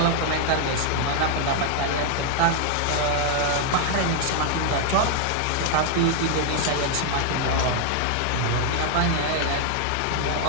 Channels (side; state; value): both; different; correlation 0.00